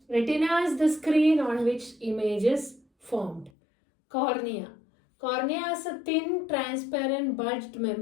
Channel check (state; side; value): drops out; right; at 3.5 s